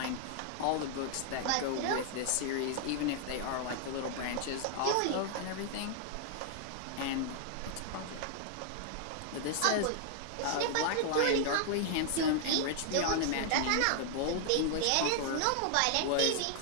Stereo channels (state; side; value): different; both; correlation 0.00